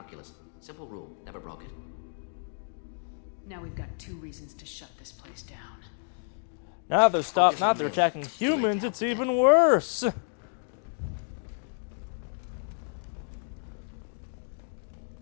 Simple rule, never broke it. Now we've got 2 reasons to shut this place down. Now they're attacking humans, it's even worse!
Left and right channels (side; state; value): right; silent; digital silence